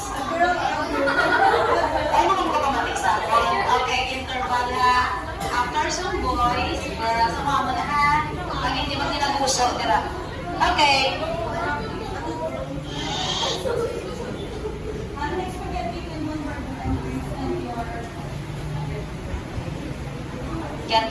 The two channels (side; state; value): both; identical; correlation 1.00